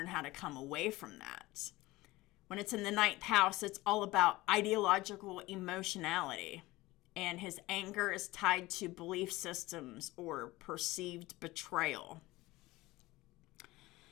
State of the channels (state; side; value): quieter; right; 19.5 dB